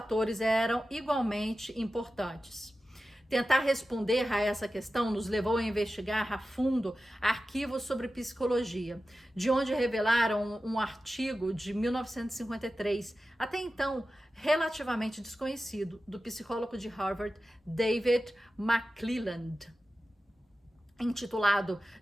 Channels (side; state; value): both; normal; correlation 0.94